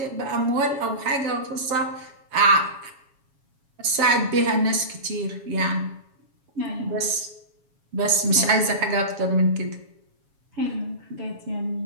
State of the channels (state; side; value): late; left; 7.2 ms